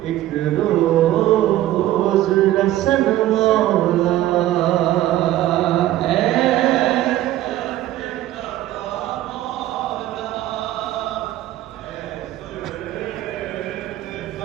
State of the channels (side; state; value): left; quieter; 14.0 dB